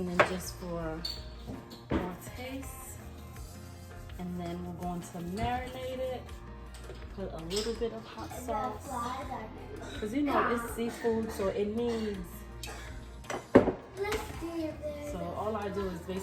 just for more taste. And then we're going to marinate it. Put a little bit of hot sauce. Because you know it's seafood, so it needs. Let's see if there's. So all I do is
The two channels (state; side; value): identical; both; correlation 1.00